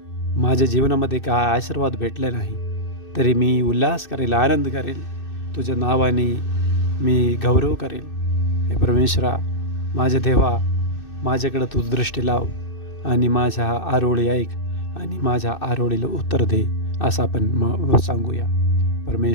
माझ्या जीवनामध्ये काय आशीर्वाद भेटले नाही, तरी मी उल्हास करेल, आनंद करेल. तुझ्या नावाने मी गौरव करेल. हे परमेश्वरा, माझ्या देवा, माझ्याकडं तू दृष्टी लाव आणि माझ्या आरोळी ऐक आणि माझ्या आरोळीला उत्तर दे, असं आपण सांगूया.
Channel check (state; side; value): late; right; 2.6 ms